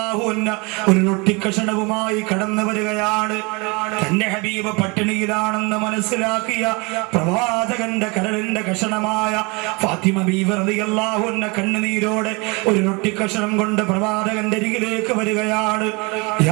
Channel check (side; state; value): left; quieter; 28.5 dB